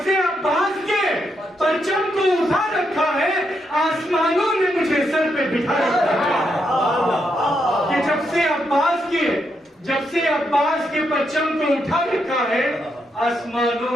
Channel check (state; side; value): normal; both; correlation 0.80